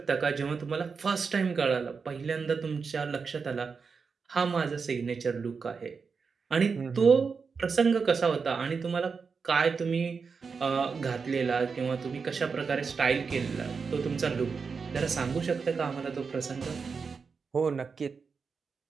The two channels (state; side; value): quieter; left; 5.3 dB